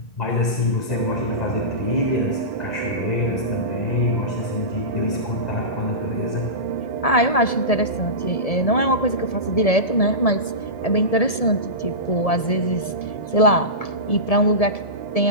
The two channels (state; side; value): late; right; 1.7 ms